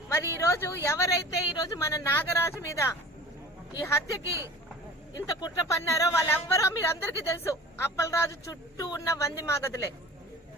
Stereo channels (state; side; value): normal; both; correlation 0.40